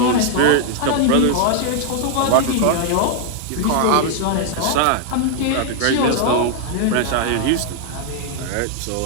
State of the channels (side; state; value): both; different; correlation 0.00